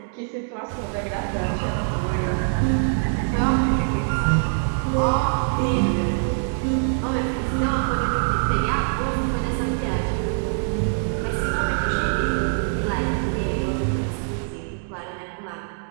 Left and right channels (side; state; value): left; silent; digital silence